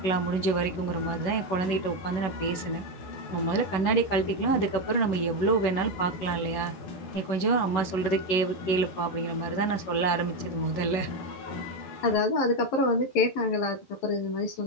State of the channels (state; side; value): late; right; 11 ms